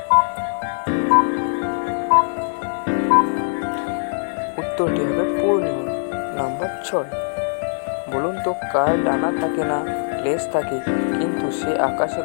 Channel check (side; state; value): right; silent; digital silence